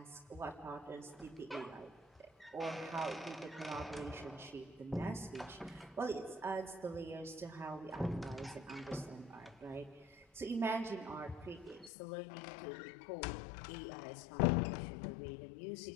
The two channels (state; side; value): drops out; right; at 11.9 s